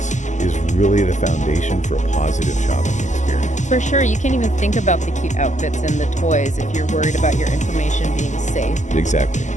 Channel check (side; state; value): right; late; 0.35 ms